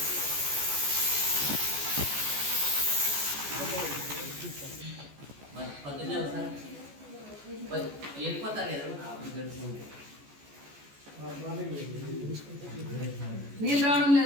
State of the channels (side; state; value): left; late; 14 ms